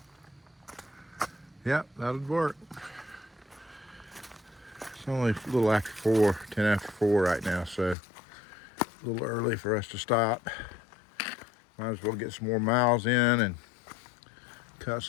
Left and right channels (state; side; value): drops out; right; at 8.0 s